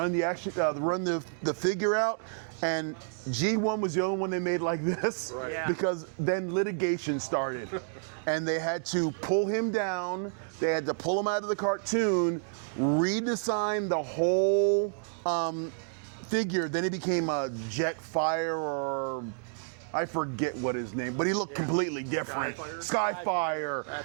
the action, run the figure out. And G1 was the only one they made like this, Yeah. because then litigation started, and they had to pull him down. They had to pull him out of the cartoon, redesign the whole figure. Then he became a Jetfire, or I forget what his name, but he looked completely different. Skyfire.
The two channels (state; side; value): silent; left; digital silence